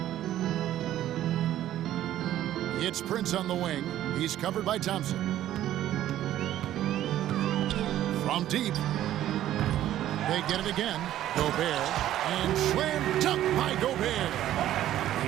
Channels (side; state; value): left; quieter; 12.7 dB